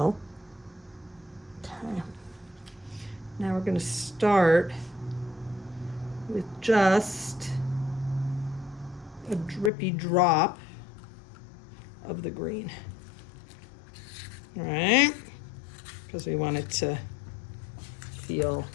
Okay. Now we're going to start with just a drippy drop of the green. All right, because we want it to feel.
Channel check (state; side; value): drops out; right; at 9.7 s